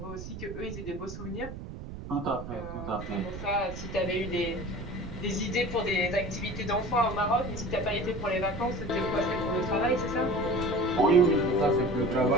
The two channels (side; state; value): right; noise; rumble, 10 dB below the sound